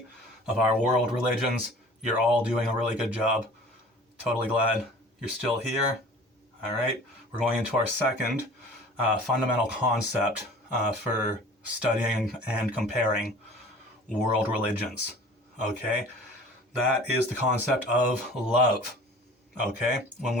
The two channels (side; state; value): both; normal; correlation 0.45